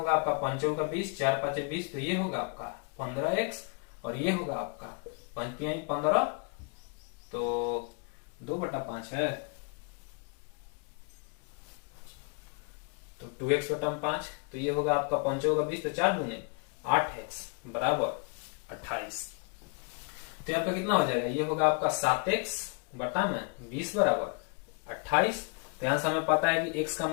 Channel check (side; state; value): right; quieter; 36.1 dB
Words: आपका 5 का 20, 4 5 20, तो ये होगा आपका 15x, और ये होगा आपका 5 15, तो 2/5 है, तो 2x बटा 5, तो ये होगा आपका 5 का 20, तो 4 दूने 8x बराबर 28। तो यहाँ पे कितना हो जाएगा? ये होगा आपका 7x बटा में 20 बराबर 28। तो यहां से हमें पता है कि x का